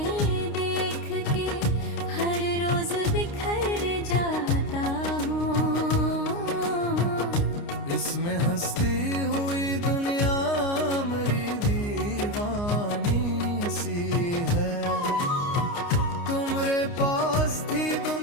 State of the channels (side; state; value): right; late; 29 ms